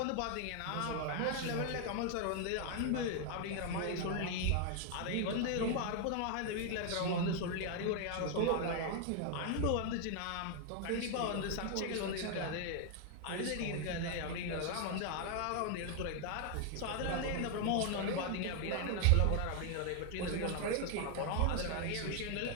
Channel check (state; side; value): different; both; correlation 0.00